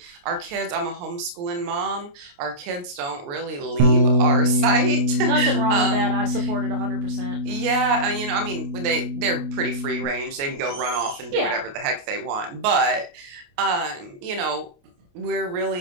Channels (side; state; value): left; late; 28 ms